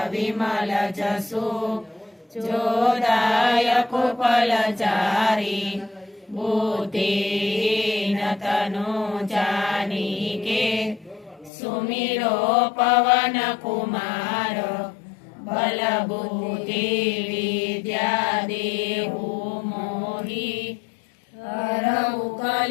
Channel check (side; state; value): right; drops out; at 11.5 s